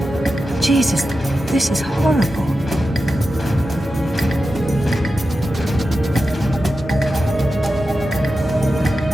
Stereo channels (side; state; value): both; normal; correlation 0.91